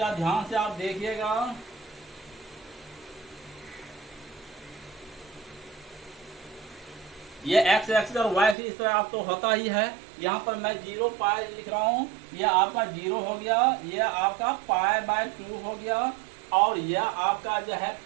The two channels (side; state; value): left; drops out; at 8.6 s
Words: ध्यान से आप देखिएगा। ये एक्स एक्सिस और वाई एक्सिस इस तरह आप तो होता ही है। यहाँ पर मैं 0 पाई लिख रहा हूँ, ये आपका 0 हो गया, ये आपका पाई/2 हो गया, और यह आपका जो है